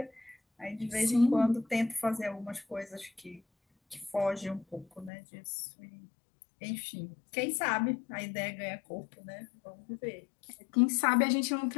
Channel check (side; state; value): right; drops out; at 5.1 s